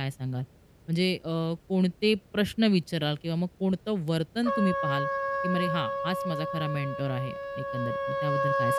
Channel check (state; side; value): identical; both; correlation 1.00